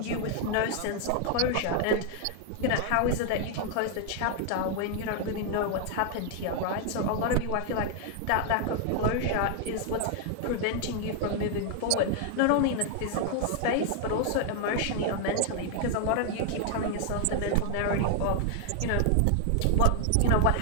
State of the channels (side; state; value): both; different; correlation 0.00